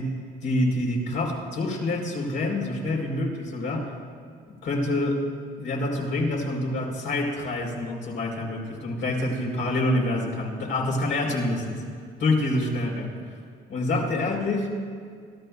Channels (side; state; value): both; normal; correlation 0.60